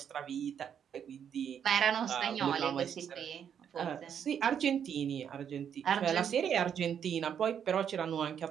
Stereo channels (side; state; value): left; quieter; 8.3 dB